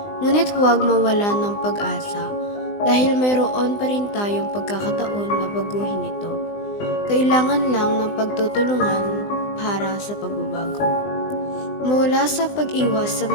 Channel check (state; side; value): late; right; 20 ms